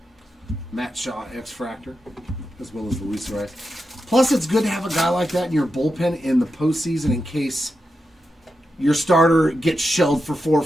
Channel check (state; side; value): normal; both; correlation 0.88